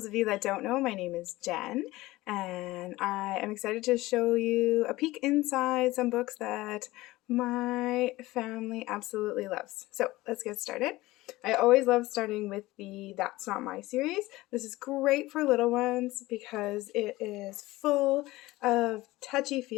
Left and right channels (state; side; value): quieter; right; 18.8 dB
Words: of you that don't know, my name is Jen, and I am excited to show you a peek inside some books that my family absolutely loves. So let's get started. I always love starting with the That's Not My series. This is great for little ones because it is full of